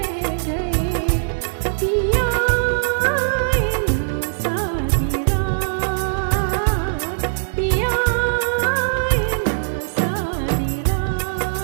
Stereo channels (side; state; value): left; silent; digital silence